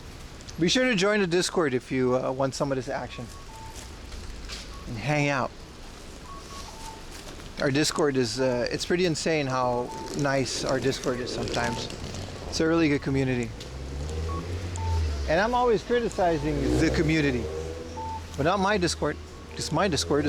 Be sure to join the Discord if you want some of this action and hang out. Our Discord is it's pretty insane how nice our Discord is sometimes. It's a really good community, and I'm always criticizing the community, but not my Discord, because my Discord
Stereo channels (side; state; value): both; identical; correlation 1.00